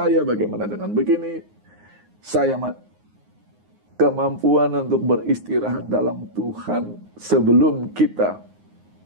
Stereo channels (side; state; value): left; late; 9.5 ms